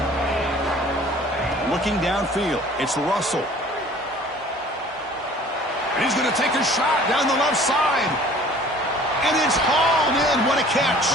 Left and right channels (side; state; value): both; normal; correlation 0.50